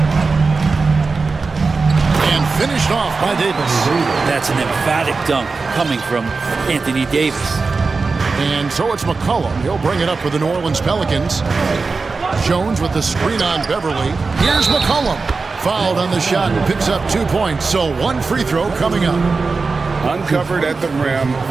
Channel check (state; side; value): quieter; left; 4.2 dB